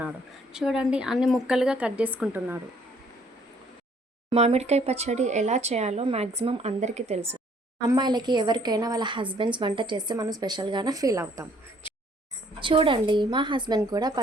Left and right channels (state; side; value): normal; both; correlation 0.62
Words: చూడండి, అన్ని ముక్కలుగా కట్ చేసుకుంటున్నాడు. మామిడికాయ పచ్చడి ఎలా చేయాలో మ్యాక్సిమం అందరికీ తెలుసు. అమ్మాయిలకి ఎవరికైనా వాళ్ళ హస్బెండ్స్ వంట చేస్తే మనం స్పెషల్గానే ఫీల్ అవుతాం. చూడండి, మా హస్బెండ్ కూడా